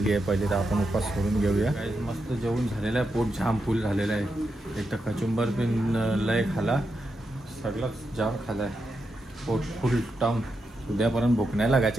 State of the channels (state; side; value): normal; both; correlation 0.85